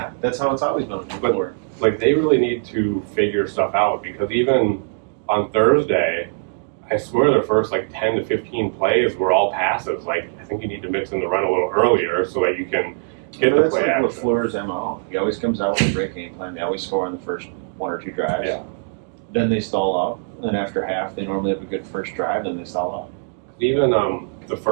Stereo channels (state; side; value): silent; left; 65 dB below the other